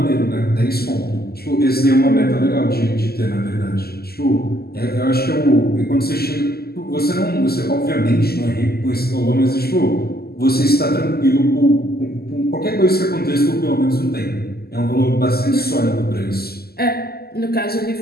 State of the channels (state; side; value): late; right; 0.46 ms